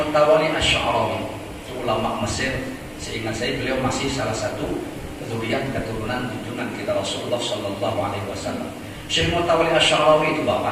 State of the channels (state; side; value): identical; both; correlation 1.00